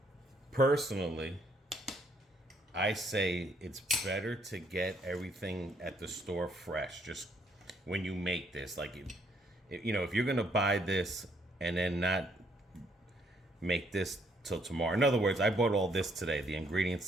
Personally, I say it's better to get everything at the store fresh. Just when you make this, like, you know, if you're gonna buy this and then not make this till tomorrow. In other words, I bought all this today, the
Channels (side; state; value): both; normal; correlation 0.69